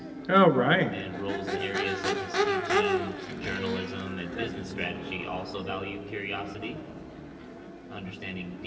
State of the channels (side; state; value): both; identical; correlation 1.00